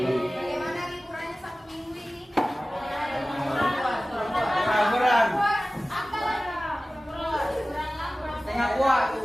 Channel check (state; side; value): normal; both; correlation 0.97